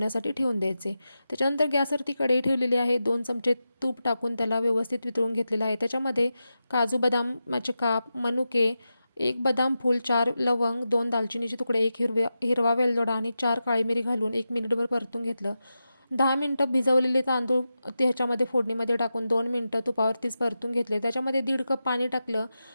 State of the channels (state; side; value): inverted; both; correlation -0.91